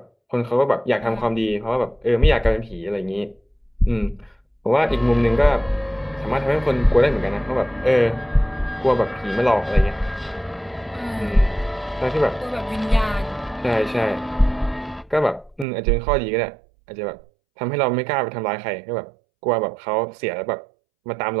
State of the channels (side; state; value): left; drops out; at 15.7 s